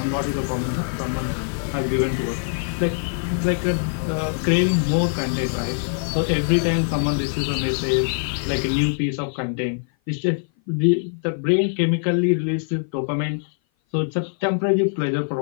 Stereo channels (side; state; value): right; silent; 57 dB below the other